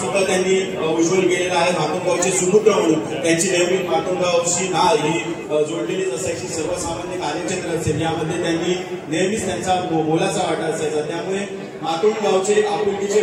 त्यांनी उज्ज्वल केलेलं आहे. मातोंड गावचे सुपुत्र म्हणून त्यांची नेहमी मातोंड गावची नाळ ही जोडलेलीच असायची. सर्वसामान्य कार्यक्षेत्र असेल यामध्ये त्यांनी नेहमीच त्यांचा मोलाचा वाटा असायचा. त्यामुळे मातोंड गावचे आपुलकीचे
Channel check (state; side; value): identical; both; correlation 1.00